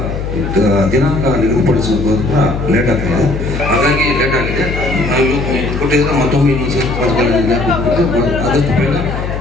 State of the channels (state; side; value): noise; left; hum, 5 dB below the sound